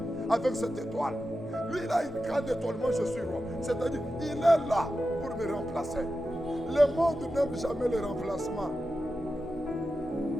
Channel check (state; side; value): normal; both; correlation 0.91